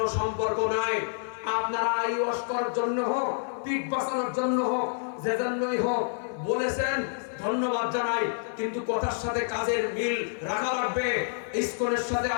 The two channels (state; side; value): silent; right; 59 dB below the other